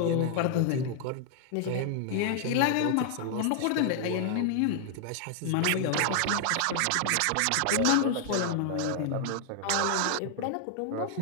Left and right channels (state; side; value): different; both; correlation -0.01